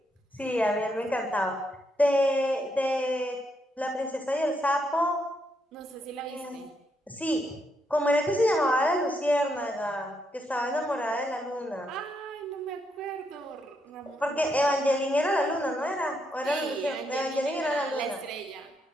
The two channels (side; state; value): both; normal; correlation 0.78